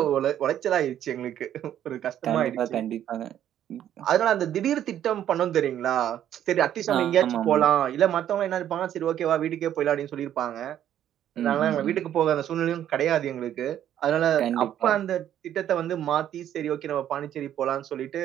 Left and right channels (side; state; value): left; quieter; 10.9 dB